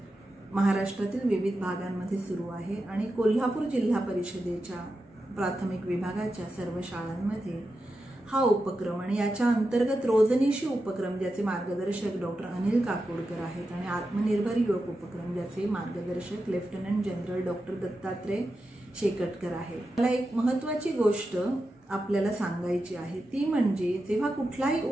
महाराष्ट्रातील विविध भागांमध्ये सुरू आहे आणि कोल्हापूर जिल्हा परिषदेच्या प्राथमिक विभागाच्या सर्व शाळांमध्ये हा उपक्रम आणि याच्या अंतर्गत रोजनिशी उपक्रम ज्याचे मार्गदर्शक डॉक्टर अनिल काकोडकर आहेत आणि आत्मनिर्भर युवक उपक्रम ज्याचे मार्गदर्शक lieutenant general doctor Dattatray Shekatkar आहेत. मला एक महत्त्वाची गोष्ट आपल्याला सांगायची आहे, ती म्हणजे जेव्हा कुठलाही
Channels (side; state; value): both; normal; correlation 0.90